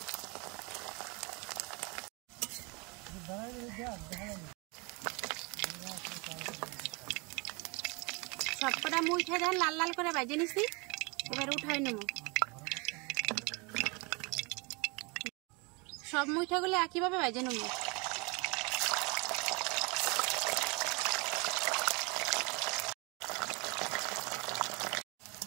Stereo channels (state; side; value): quieter; left; 29.6 dB